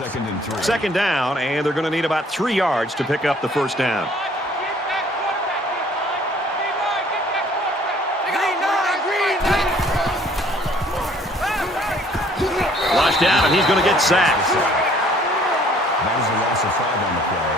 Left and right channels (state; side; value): normal; both; correlation 0.58